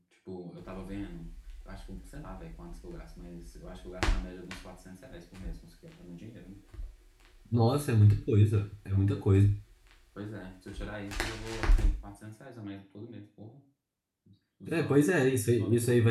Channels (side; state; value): both; identical; correlation 1.00